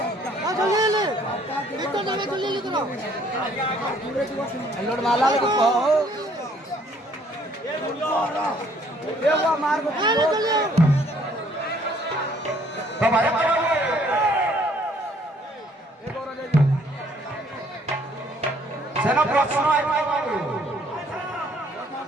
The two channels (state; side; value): normal; both; correlation 0.62